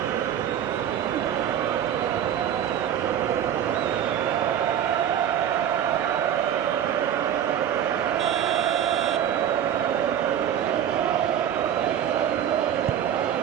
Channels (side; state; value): left; quieter; 9.8 dB